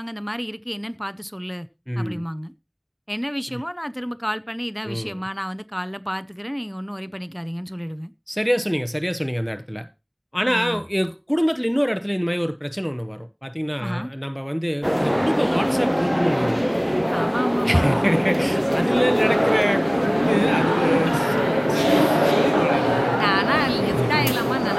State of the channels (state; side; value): identical; both; correlation 1.00